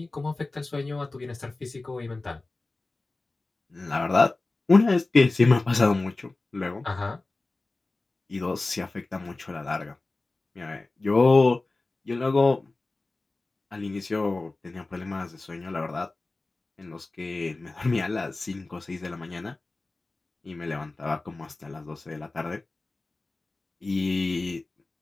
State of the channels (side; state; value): right; quieter; 3.2 dB